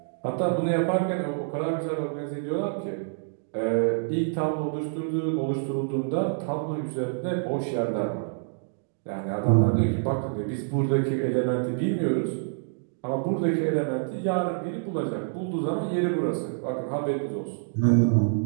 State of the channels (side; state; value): left; silent; digital silence